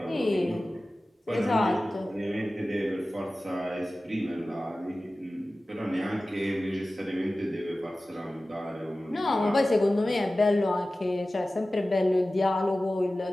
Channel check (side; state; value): both; normal; correlation 0.96